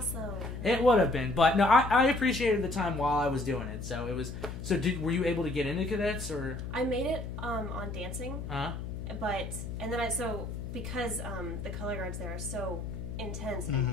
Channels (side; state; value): left; noise; hum, 7 dB below the sound